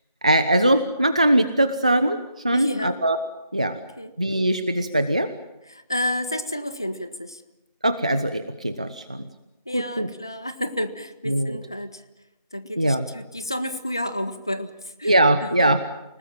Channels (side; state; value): both; inverted; correlation -0.77